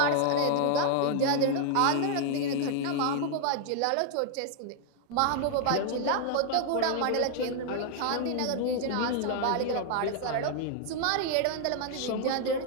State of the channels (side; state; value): both; different; correlation 0.00